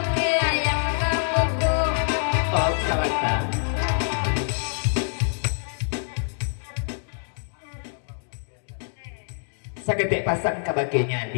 ayam kapoko. Oh salata saketik pasang kabagenya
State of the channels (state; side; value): silent; right; digital silence